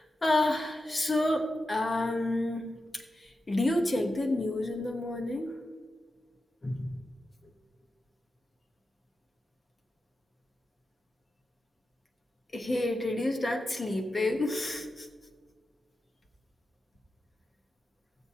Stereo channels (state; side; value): normal; both; correlation 0.90